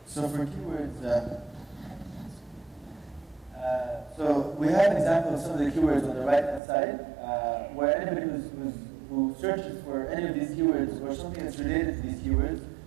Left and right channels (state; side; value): drops out; left; at 6.6 s